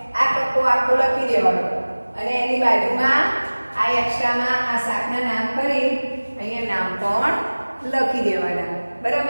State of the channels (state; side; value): inverted; both; correlation -1.00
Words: આ કક્કો આખો લખી દેવાનો અને એની બાજુમાં આ એક્સ્ટ્રામાં આ શાકના નામ કરી અહીંયા નામ પણ લખી દેવાના.